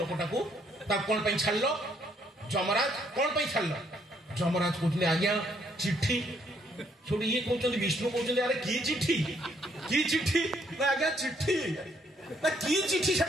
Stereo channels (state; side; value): normal; both; correlation 0.69